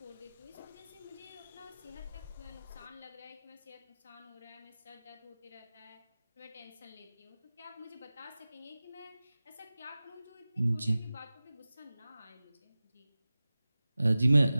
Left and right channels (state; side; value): inverted; both; correlation -0.97